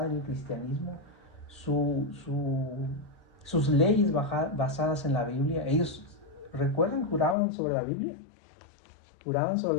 en el cristianismo, sus leyes basadas en la Biblia. Ellos, recuerden, juraban sobre la Biblia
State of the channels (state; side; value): drops out; right; at 7.4 s